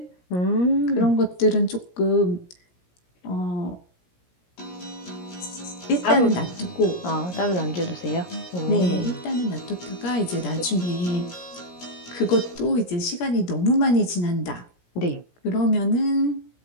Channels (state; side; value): late; right; 17 ms